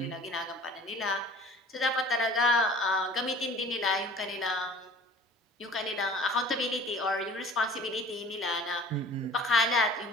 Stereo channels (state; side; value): normal; both; correlation 0.47